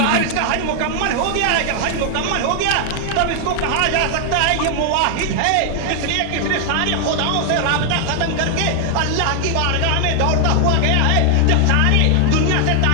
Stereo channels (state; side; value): different; both; correlation 0.00